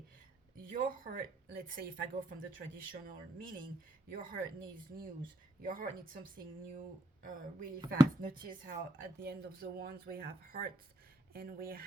your heart, let's say if I go from the traditional meaning, your heart needs news, your heart needs something new, really fast. Notice how at the end of the wands we have hearts and we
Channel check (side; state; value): both; normal; correlation 0.74